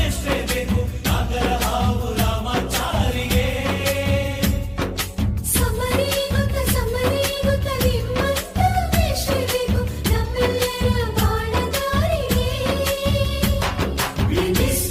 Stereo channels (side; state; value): both; identical; correlation 1.00